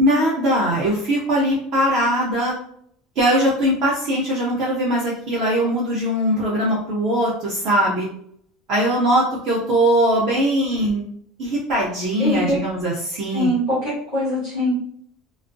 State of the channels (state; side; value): normal; both; correlation 0.31